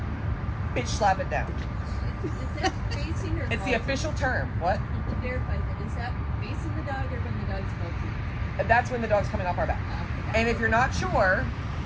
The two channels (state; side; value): identical; both; correlation 1.00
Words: bitch slap it down. Is that facing or It's the going? official term. What? To verify that, is that facing the dog or when the dog's bolting? And that's when the dog's coming off our back. And if you're not sure,